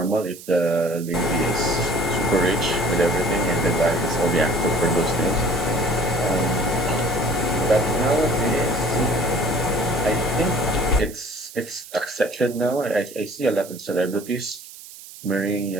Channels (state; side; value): noise; right; hiss, 16 dB below the sound